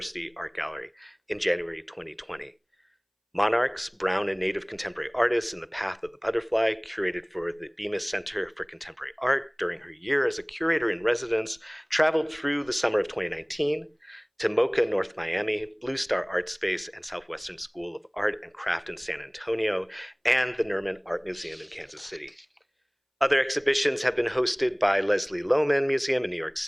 Art Gallery in January 2020. Monarchs, Brown and Native Contemporary Artists in the Path of the Butterfly, curated for the Bemis Center for Contemporary Art during her year as a curator in residence, traveled through the summer of 2019 to MoCA North Miami, Blue Star Art Space, and Southwestern School of Art and Craft in San Antonio, and the Nerman Art Museum in Kansas City. Other exhibitions have been hosted by Leslie Lohman Museum in New York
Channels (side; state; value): both; identical; correlation 1.00